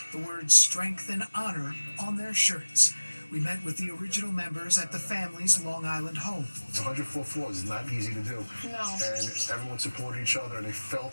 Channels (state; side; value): inverted; both; correlation -1.00